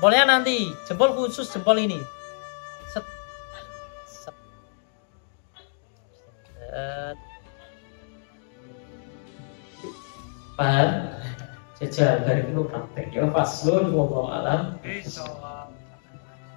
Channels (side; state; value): right; silent; digital silence